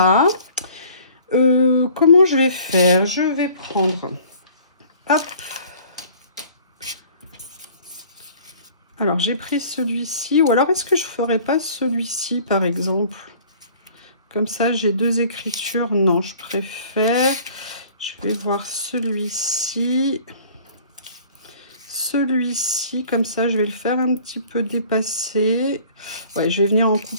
comment je vais faire? Je vais prendre, hop. Alors, j'ai pris celui-ci. Ou alors, est-ce que je ne ferais pas celui-ci, par exemple? Comme ça, j'ai deux écritures. Non, je préfère. Je vais voir celui-ci. Celui-ci, comme ça, je vais le faire un petit peu dépasser. Ouais, je vais venir en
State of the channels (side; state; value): both; inverted; correlation -0.50